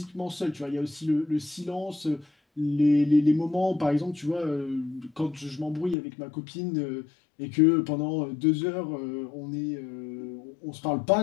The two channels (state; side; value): drops out; right; at 6.0 s